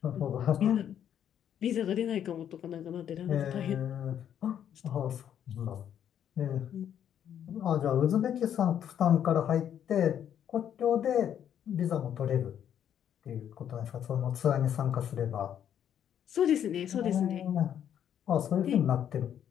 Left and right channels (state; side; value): quieter; right; 9.6 dB